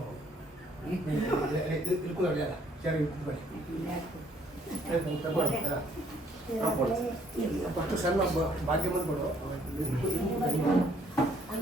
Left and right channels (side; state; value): both; normal; correlation 0.64